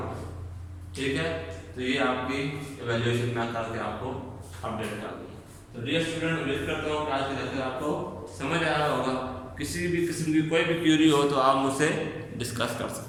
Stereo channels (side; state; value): both; identical; correlation 1.00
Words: ہے، ٹھیک ہے۔ تو یہ آپ کی ایویلیویشن میں کر کے آپ کو اپڈیٹ کر دوں۔ تو ڈیئر اسٹوڈنٹ، امید کرتا ہوں کہ آج کے لیکچر آپ کو سمجھ آیا ہوگا۔ کسی بھی قسم کی کوئی بھی کیوری ہو تو آپ مجھ سے ڈسکس کر